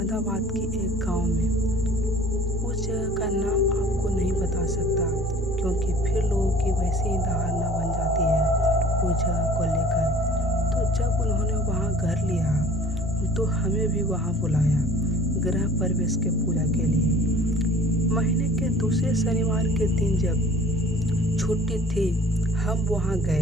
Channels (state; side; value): normal; both; correlation 0.49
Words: की एक गांव में। उस जगह का नाम आपको नहीं बता सकता, क्योंकि फिर लोगों की वैसी ही धारणा बन जाती है उस जगह को लेकर। तो जब उन्होंने वहां घर लिया तो हमें भी वहां बुलाया गृह प्रवेश के पूजा के लिए। महीने के दूसरे शनिवार के दिन जब छुट्टी थी, हम वहां